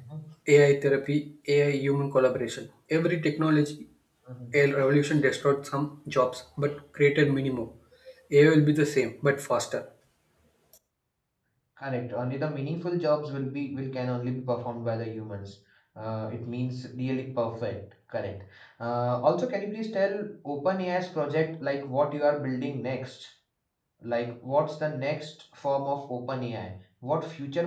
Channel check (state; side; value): identical; both; correlation 1.00